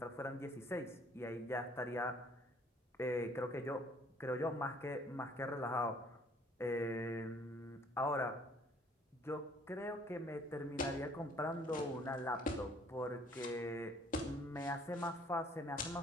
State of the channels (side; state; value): both; normal; correlation 0.59